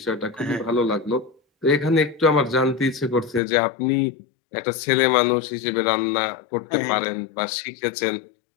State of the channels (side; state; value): right; drops out; at 3.4 s